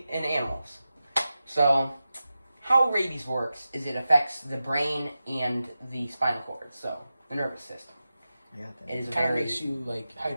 in animals. So, how rabies works is it affects the brain and the spinal cord, so the nervous system. Yeah, It is Kind of makes you like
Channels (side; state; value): both; inverted; correlation -0.93